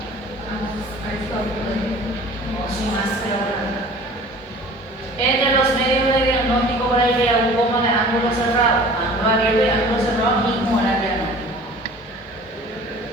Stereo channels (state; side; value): normal; both; correlation 0.45